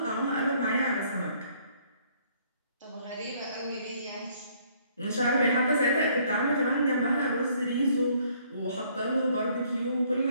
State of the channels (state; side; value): inverted; both; correlation -0.64